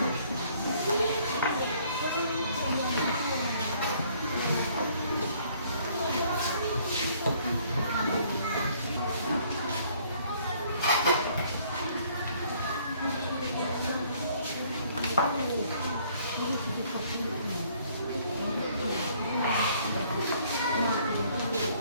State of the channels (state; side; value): inverted; both; correlation -0.62